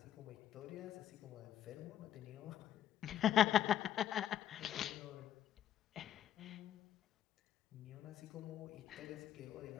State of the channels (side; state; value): right; quieter; 10.8 dB